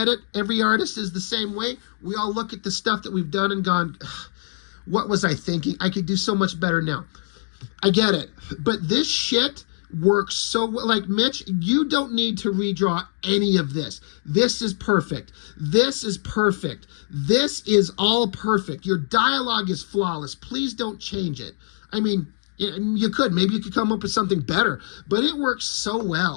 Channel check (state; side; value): silent; right; 63 dB below the other